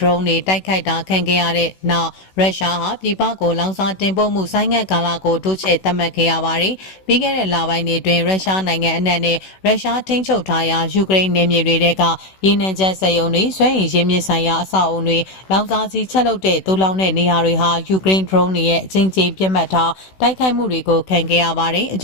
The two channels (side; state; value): right; late; 16 ms